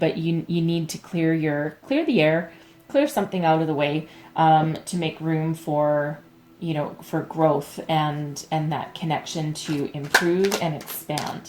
you need to clear the air, clear something out of the way to make room for for growth and that connection to improve and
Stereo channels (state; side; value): identical; both; correlation 1.00